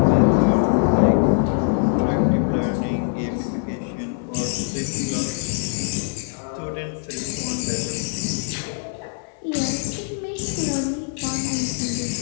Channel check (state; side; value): silent; right; digital silence